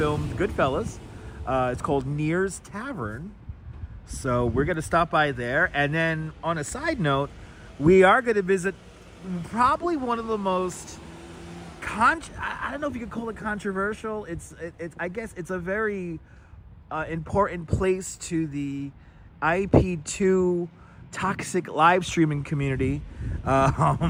Goodfellas. It's called Neir's Tavern. So we're going to stop by there. And then on a side note, we are going to visit probably one of the most, I don't know if you could call it controversial. It's I guess it's a very important place to the IP2 toxic live streaming community.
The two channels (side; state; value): both; identical; correlation 1.00